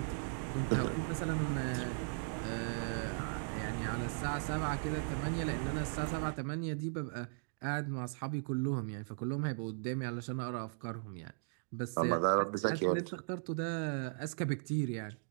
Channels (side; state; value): left; silent; digital silence